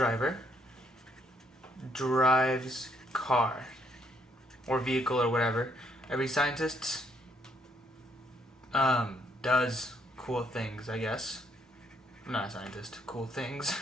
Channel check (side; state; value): both; normal; correlation 0.70